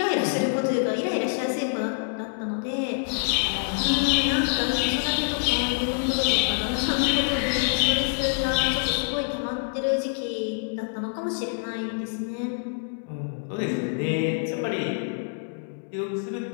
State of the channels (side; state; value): right; silent; digital silence